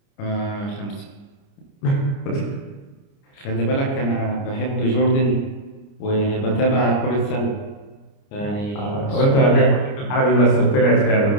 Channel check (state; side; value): late; right; 29 ms